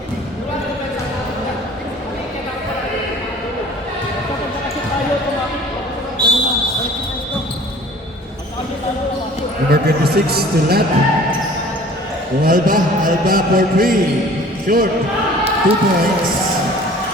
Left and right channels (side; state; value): both; normal; correlation 0.49